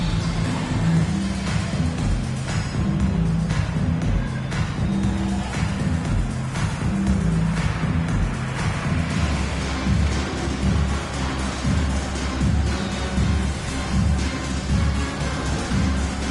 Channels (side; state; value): both; identical; correlation 1.00